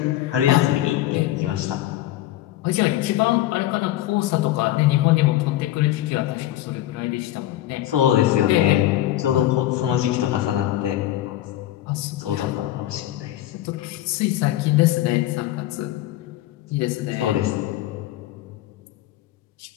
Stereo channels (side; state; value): right; quieter; 14.2 dB